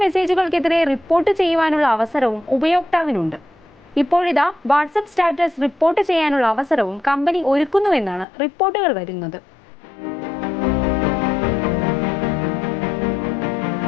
മെസ്സേജുകൾക്കെതിരെ റിപ്പോർട്ട് ചെയ്യുവാനുള്ള അവസരവും ഉപയോക്താവിനുണ്ട്. ഇപ്പോഴിതാ വാട്സപ്പ് സ്റ്റാറ്റസ് റിപ്പോർട്ട് ചെയ്യാനുള്ള അവസരവും കമ്പനി ഒരുക്കുന്നുവെന്നാണ് റിപ്പോർട്ടുകൾ വരുന്നത്.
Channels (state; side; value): drops out; right; at 8.2 s